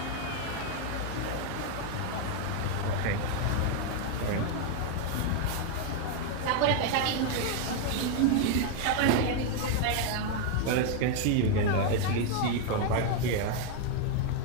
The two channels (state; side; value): different; both; correlation 0.00